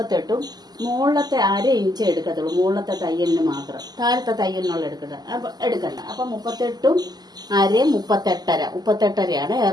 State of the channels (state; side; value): late; left; 0.20 ms